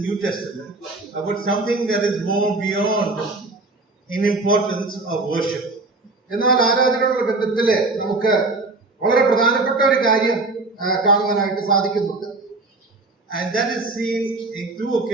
New Testament, about something that is more beyond in importance of worship. എന്നാൽ ആരാധനയോടുള്ള ബന്ധത്തില് നമുക്ക് വളരെ പ്രധാനപ്പെട്ട ഒരു കാര്യം കാണുവാനായിട്ട് സാധിക്കുന്നുണ്ട്. And that is seen in two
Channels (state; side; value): quieter; left; 3.3 dB